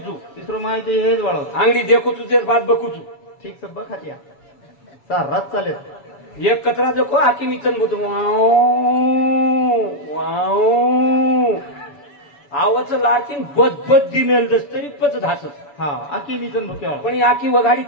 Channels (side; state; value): right; late; 7.1 ms